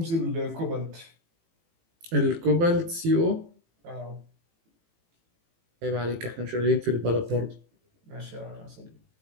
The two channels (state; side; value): late; left; 18 ms